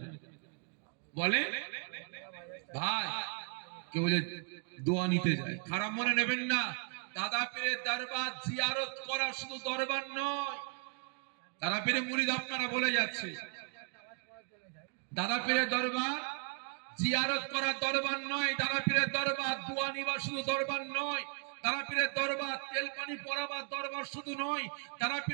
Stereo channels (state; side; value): quieter; left; 39.2 dB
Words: বলে ভাই কেউ যে দোয়া নিতে যায়, খারাপ মনে নেবেন না। দাদা পীরের দরবার জিয়ারত করা শুধু দরবার নয়। দাদা পীরের মুরিদ আপনারা বলে যাচ্ছে, দাদা পীরের দরবার জিয়ারত করা দরবার নয়। দাদা পীরের দরবার দোয়া নিবা শুধু দরবার নয়। দাদা পীরের দরবার তেল পানি পরাবার দরবার শুধু নয়। দাদা